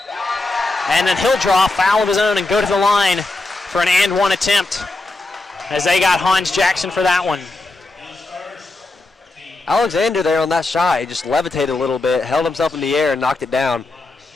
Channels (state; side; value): quieter; right; 3.1 dB